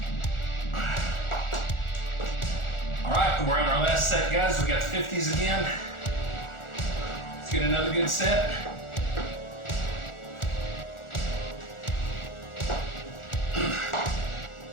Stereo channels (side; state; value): right; late; 1.4 ms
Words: All right, we're on our last set, guys. We got the 50s again. Let's get another good set.